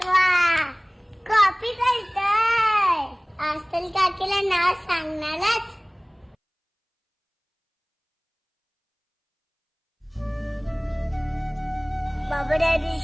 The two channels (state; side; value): identical; both; correlation 1.00